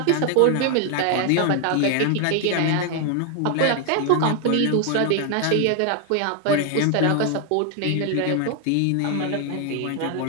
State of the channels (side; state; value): both; different; correlation 0.01